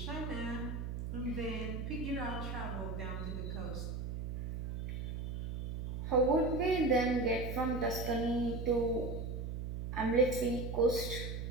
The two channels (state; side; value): noise; right; hum, 4 dB below the sound